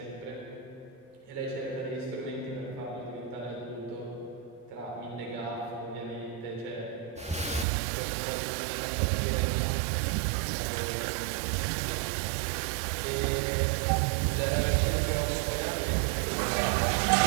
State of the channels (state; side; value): drops out; left; at 7.7 s